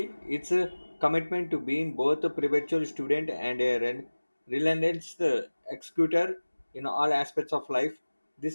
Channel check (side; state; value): both; inverted; correlation -1.00